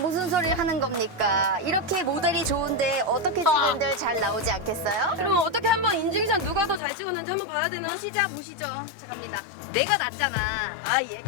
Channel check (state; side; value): drops out; right; at 6.8 s